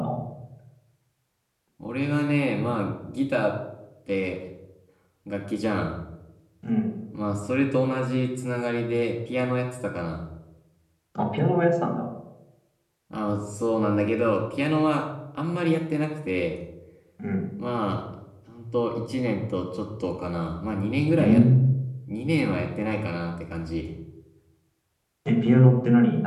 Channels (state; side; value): identical; both; correlation 1.00